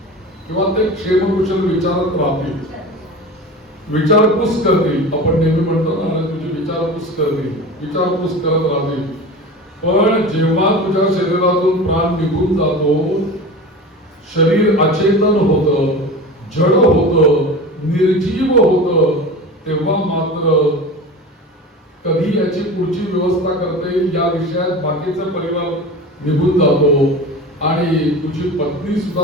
किंवा ते क्षेम कुशल विचारत राहतील, विचारपूस करतील. आपण नेहमी म्हणतो ना, तुझी विचारपूस करतील, विचारपूस करत राहतील. पण जेव्हा तुझ्या शरीरातून प्राण निघून जातो, शरीर अचेतन होतं, जड होतं, निर्जीव होतं, तेव्हा मात्र कधी याची पुढची व्यवस्था करता येईल या विषयात बाकीचा परिवार निघून जातो आणि तुझी पत्नी सुद्धा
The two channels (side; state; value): both; normal; correlation 0.32